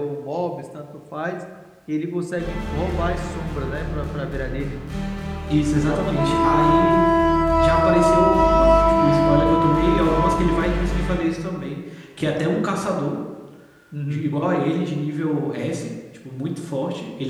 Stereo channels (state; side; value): identical; both; correlation 1.00